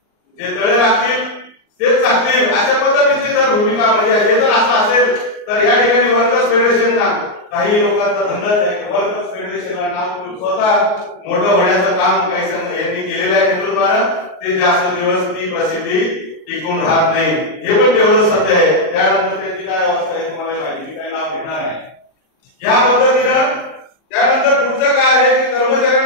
जे तळे राखतील तेच चाकतील, अशा पद्धतीची जर भूमिका म्हणजे हे जर असं असेल तर या ठिकाणी वर्कर्स फेडरेशनला काही लोकांचा धंदाच आहे. वर्कर्स फेडरेशनला नाव स्वतः मोठं होण्याचं काम काही यांनी केलेलं आहे नेतृत्वानं, ते जास्त दिवस ती प्रसिद्धी टिकून राहत नाही, हे पण तेवढं सत्य आहे. त्यानंतर त्यांची काय अवस्था आहे तुम्हाला माहिती, काही नाव घेणार आहे. या पद्धतीनं त्यानंतर पुढचं काय आहे की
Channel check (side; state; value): right; late; 38 ms